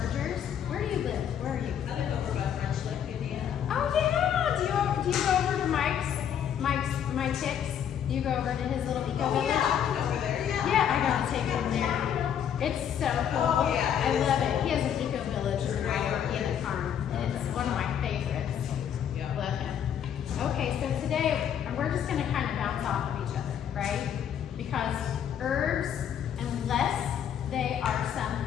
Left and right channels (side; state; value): right; quieter; 9.1 dB